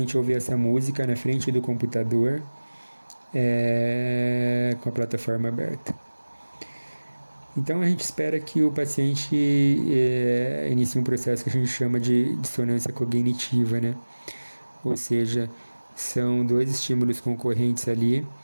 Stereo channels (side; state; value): both; inverted; correlation -1.00